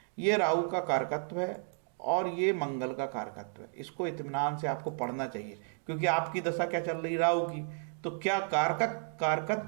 ये राहु का कारकत्व है और ये मंगल का कारकत्व है। इसको इत्मीनान से आपको पढ़ना चाहिए, क्योंकि आपकी दशा क्या चल रही राहु की, तो क्या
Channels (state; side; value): silent; left; digital silence